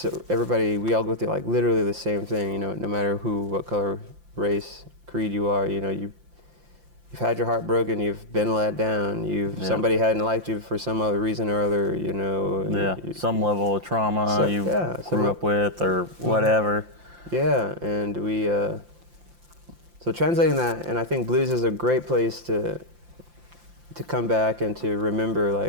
everybody, we all go through like literally the same thing, you know, no matter who, what color, race, creed you are, you know, you've had your heart broken, you've been let down, somebody hadn't liked you for some other reason or other, you know. Yeah, some level of trauma grew up with or whatever. Yeah, and we, so translating that, and I think blues is a great place to come back and to remember,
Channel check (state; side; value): late; left; 5.8 ms